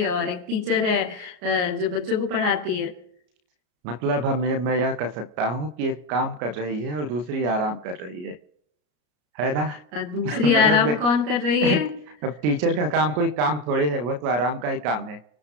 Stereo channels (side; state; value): left; late; 33 ms